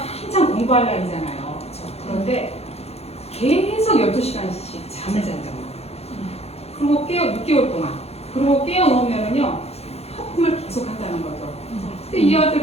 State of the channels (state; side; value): late; right; 0.30 ms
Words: 공부할 나이잖아요. 그렇죠? 그런데 계속 12시간씩 잠을 잔다는 거예요. 그리고 6개월 동안. 그리고 깨어놓으면은요, 하품을 계속 한다는 거죠. 근데 이